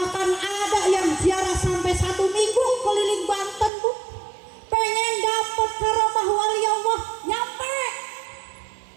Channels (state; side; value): drops out; left; at 3.7 s